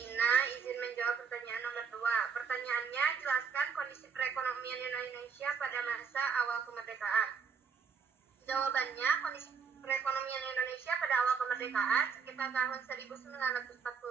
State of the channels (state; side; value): quieter; left; 6.0 dB